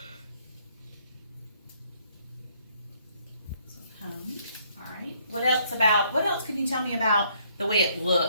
So cone. All right. What else can you tell me about the way it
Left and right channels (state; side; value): inverted; both; correlation -0.67